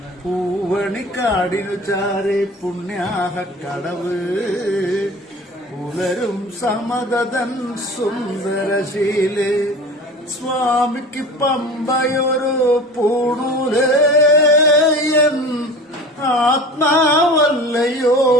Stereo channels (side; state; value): both; normal; correlation 0.38